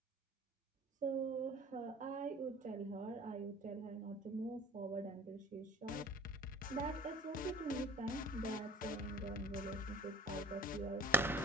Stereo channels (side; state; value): both; normal; correlation 0.46